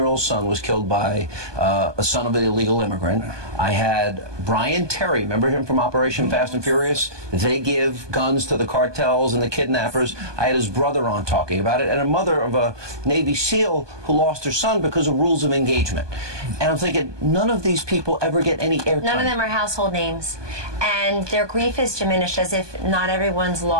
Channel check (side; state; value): left; late; 1.2 ms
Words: son was killed by a son of an illegal immigrant. I had Brian Terry, remember him from Operation Fast and Furious? They give guns to the cartels and the kidnappers. I had his brother on talking about it, and a mother of a Navy SEAL who lost her son because of rules of engagement. And I'm thinking, none of these people ever get any airtime. None of them are household names. And their grief is diminished as if not everyone's